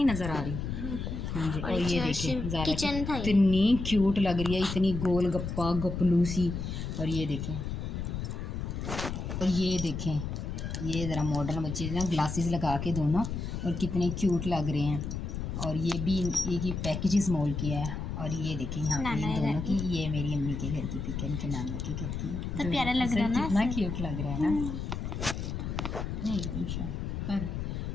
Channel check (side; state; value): left; noise; rumble, 4 dB below the sound